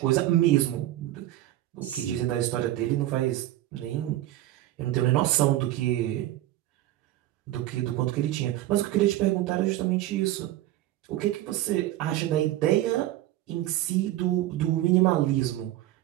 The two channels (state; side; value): quieter; left; 14.7 dB